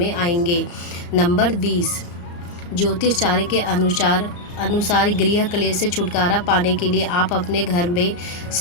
आएंगे। नंबर 20, ज्योतिष चार्य के अनुसार अनुसार गृह क्लेश से छुटकारा पाने के लिए आप अपने घर में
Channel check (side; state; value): right; late; 35 ms